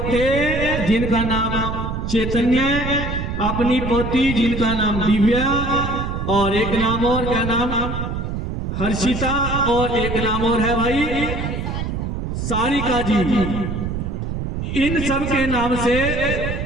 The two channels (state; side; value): noise; right; rumble, 4 dB below the sound